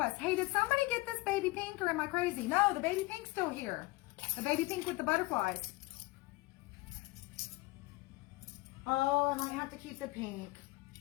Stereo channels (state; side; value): quieter; right; 21.8 dB